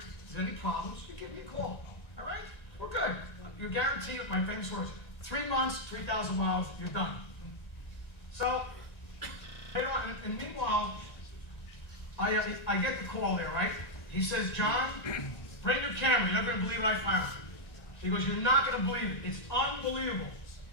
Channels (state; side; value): late; right; 1.9 ms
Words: there's any problems, you give me a call. All right? We're good. You guarantee it, my famous words, 3 months, 3,000 miles, you're done. So, and meanwhile, I get the call there, right? He says, John, bring your camera. You're not going to believe what I found. He goes, you're not going to believe it. It's unbelievable.